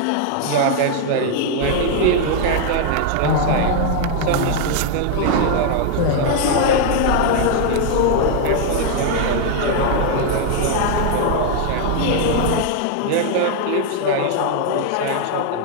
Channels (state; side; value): different; both; correlation 0.00